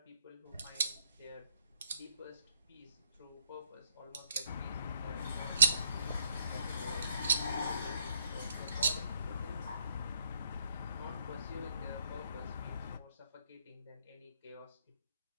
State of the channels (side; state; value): both; inverted; correlation -0.70